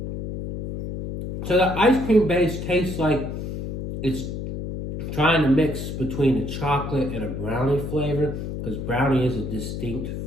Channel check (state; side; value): noise; left; hum, 6 dB below the sound